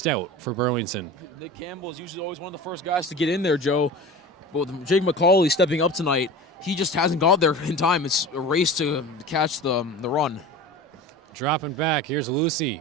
for Burlington. Nick Campbell is usually always one of the first guys to get in there, Joe. But with Jake McCauley stepping up tonight, he just hasn't got there in time. It's a race to catch the run. Dropping back, here's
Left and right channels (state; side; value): normal; both; correlation 0.34